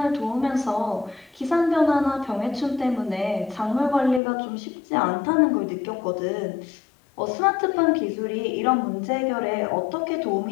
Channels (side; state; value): right; drops out; at 4.2 s